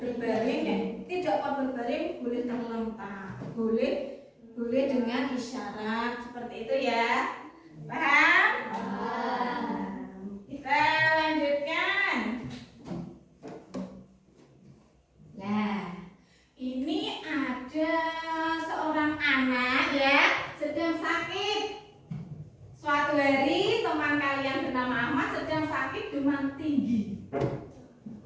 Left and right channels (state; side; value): identical; both; correlation 1.00